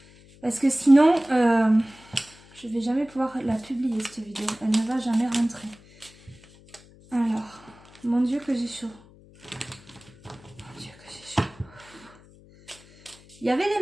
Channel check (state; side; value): noise; left; hum, 24 dB below the sound